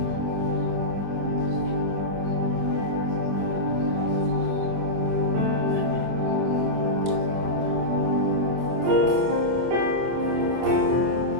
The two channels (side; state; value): left; late; 25 ms